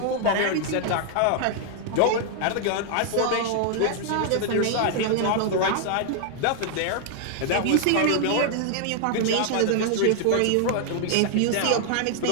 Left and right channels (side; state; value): both; different; correlation 0.00